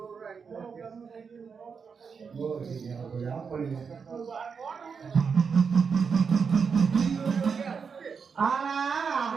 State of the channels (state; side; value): quieter; left; 5.9 dB